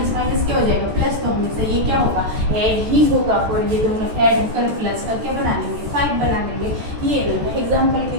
माइनस क्या हो जाएगा, प्लस, तो हमेशा ये क्या होगा, ऐड ही होगा, और ये दोनों ऐड होकर प्लस का क्या बना लेंगे, 5 बना लेंगे। ये इन्होंने एग्जाम्पल भी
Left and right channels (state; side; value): late; left; 14 ms